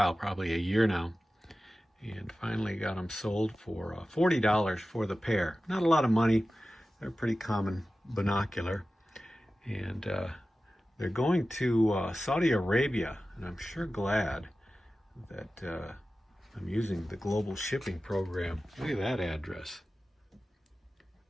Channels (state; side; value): normal; both; correlation 0.95